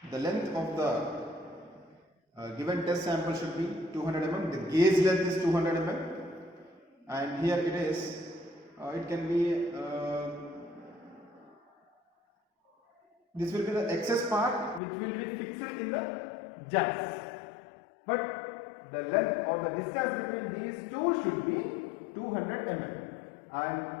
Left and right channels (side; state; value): right; drops out; at 14.8 s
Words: The length of the given test sample should be 200 mm. The gauge length is 200 mm, and here it is. It can be. This will be the excess part which will be fixed in the jacks. But the length or the distance between these two should be 200 mm, and